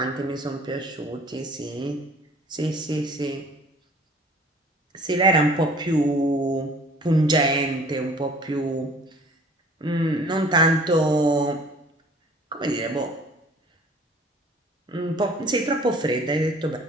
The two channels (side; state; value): both; normal; correlation 0.51